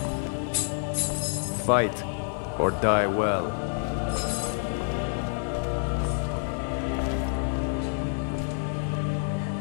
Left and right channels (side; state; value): right; silent; 59 dB below the other